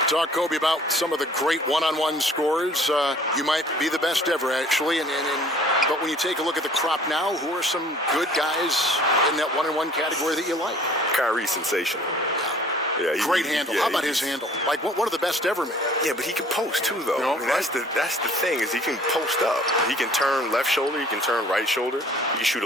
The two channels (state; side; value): normal; both; correlation 0.53